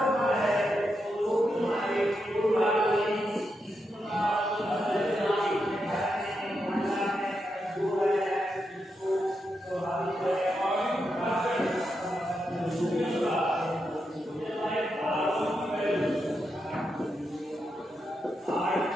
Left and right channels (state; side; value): normal; both; correlation 0.85